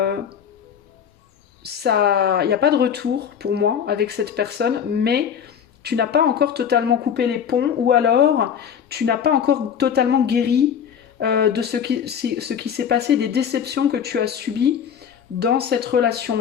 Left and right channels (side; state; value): right; quieter; 8.1 dB